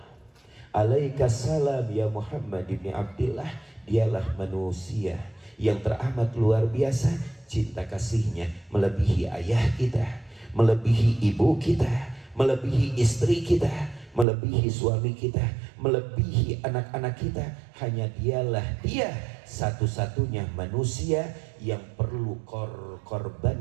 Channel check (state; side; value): drops out; left; at 14.2 s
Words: alaikassalam ya Muhammad ibn Abdillah. Dialah manusia yang teramat luar biasa. Cinta kasihnya melebihi ayah kita, melebihi ibu kita, melebihi istri kita, melebihi suami kita, melebihi anak-anak kita. Hanya dialah dia satu-satunya manusia yang perlu